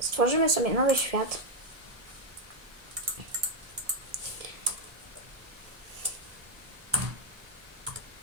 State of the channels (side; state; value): left; late; 1.7 ms